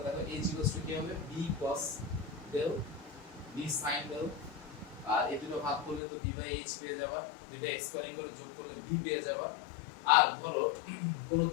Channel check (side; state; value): right; drops out; at 6.0 s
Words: দেখো h কি হবে b cos del b sin del। আর এই দুটো ভাগ করলে তো b/h পেয়ে যাবা, দুটো স্কয়ারিং করে যোগ করলে b পেয়ে যাবা। আর ধরো কোন